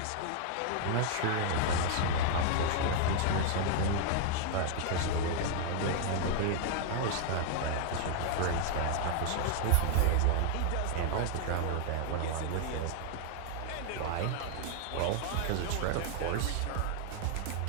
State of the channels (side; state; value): both; different; correlation 0.00